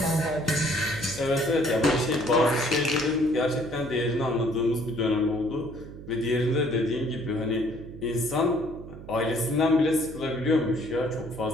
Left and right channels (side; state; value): right; noise; hum, 14 dB below the sound